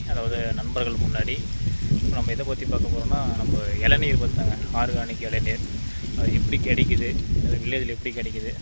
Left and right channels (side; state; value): both; inverted; correlation -1.00